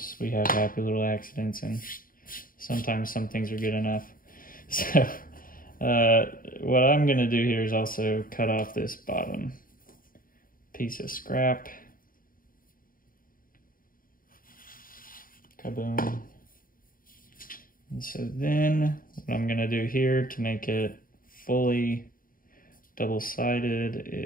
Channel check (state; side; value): late; right; 0.41 ms